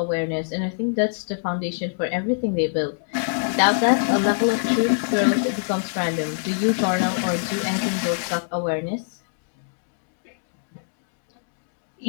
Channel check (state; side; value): silent; right; digital silence